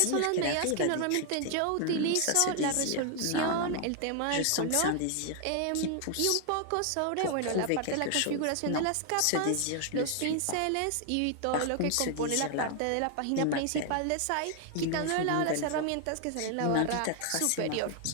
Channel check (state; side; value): different; both; correlation 0.00